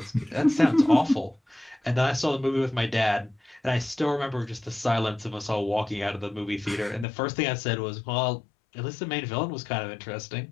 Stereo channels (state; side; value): drops out; right; at 7.1 s